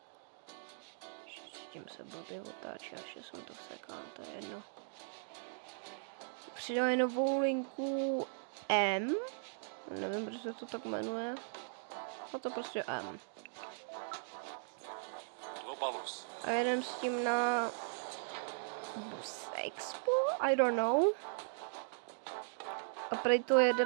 S tím se blbě otáčí, až jsem to vsekal, to je jedno. Přidali novou linku M. Nevím, proč se to tak jmenuje. A to prostě M. A jedem s tím na Bus Expo? I don't know. A prej to jede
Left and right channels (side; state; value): left; silent; digital silence